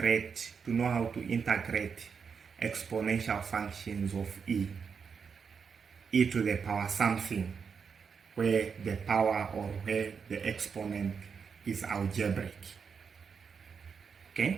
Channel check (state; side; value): quieter; left; 6.1 dB